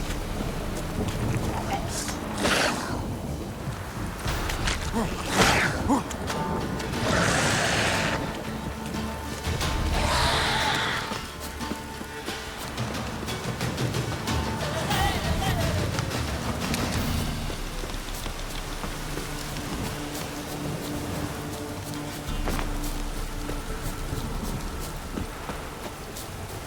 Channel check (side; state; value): both; identical; correlation 1.00